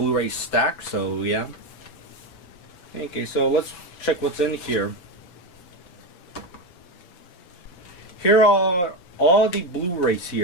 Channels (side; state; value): right; late; 5.9 ms